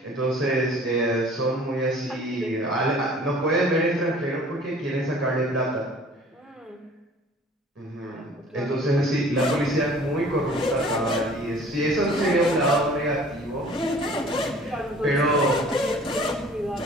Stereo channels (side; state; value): both; normal; correlation 0.50